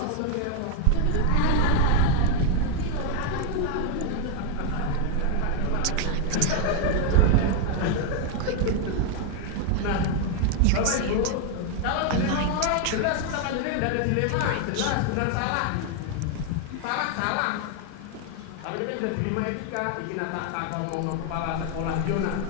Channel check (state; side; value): different; both; correlation 0.01